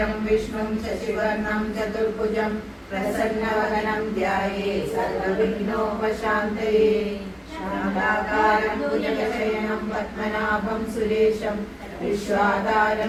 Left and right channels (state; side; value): identical; both; correlation 1.00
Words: विष्णुं शशिवर्णं चतुर्भुजं प्रसन्नवदनं ध्यायेत् सर्वविघ्नोपशान्तये शान्ताकारं भुजगशयनं पद्मनाभं सुरेशं